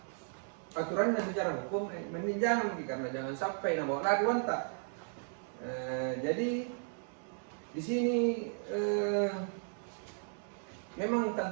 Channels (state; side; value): silent; left; 54 dB below the other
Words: aturannya secara hukum, mending jangan, karena jangan sampai bawa lari wanta. Jadi di sini memang